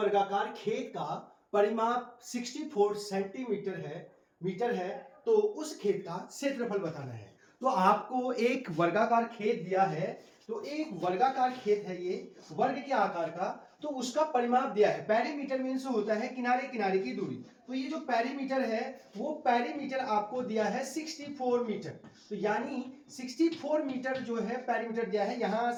खेत का परिमाप 64 सेंटीमीटर मीटर है, तो उस खेत का क्षेत्रफल बताना है। तो आपको एक वर्गाकार खेत दिया है, तो एक वर्गाकार खेत है ये वर्ग के आकार का, तो उसका परिमाप दिया है। पेरीमीटर मीन्स होता है किनारे किनारे की दूरी। तो ये जो पेरीमीटर है वो पेरीमीटर आपको दिया है 64 मीटर। तो यानी 64 मीटर जो है पेरीमीटर दिया है, यहां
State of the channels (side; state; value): both; identical; correlation 1.00